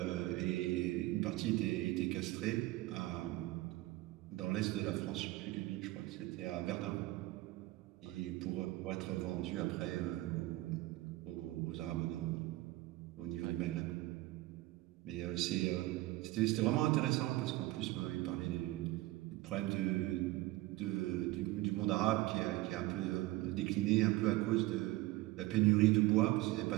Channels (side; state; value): left; quieter; 18.4 dB